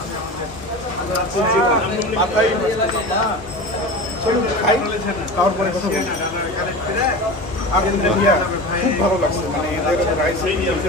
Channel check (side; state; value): both; normal; correlation 0.30